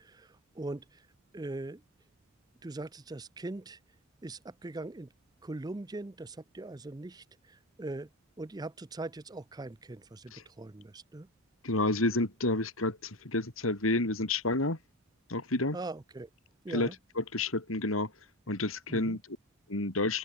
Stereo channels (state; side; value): normal; both; correlation 0.18